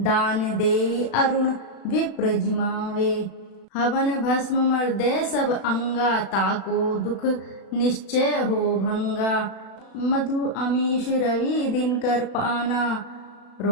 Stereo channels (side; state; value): right; late; 36 ms